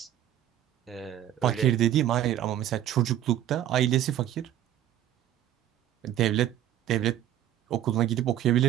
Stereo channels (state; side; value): quieter; left; 11.8 dB